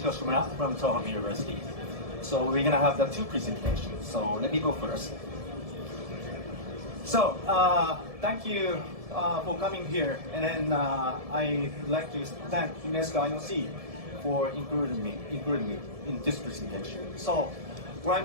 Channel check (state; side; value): late; left; 1.7 ms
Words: from Tohoku University. So we're gonna have the two presentations. So let me go first. So thank you for coming here, and then I'd like to thank UNESCO IOC for including me in this presentation. So what